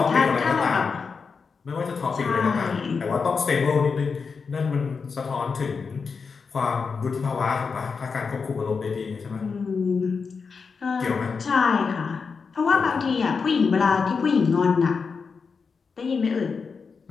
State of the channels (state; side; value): quieter; right; 5.3 dB